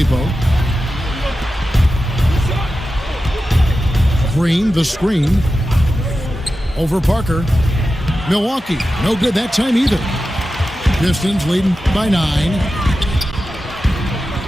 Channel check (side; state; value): both; normal; correlation 0.92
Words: Green, the screen. Over Parker. Milwaukee, no good that time either. Pistons leading by 9.